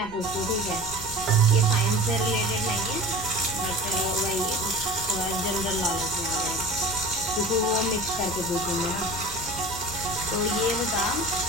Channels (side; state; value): right; noise; rumble, 19 dB below the sound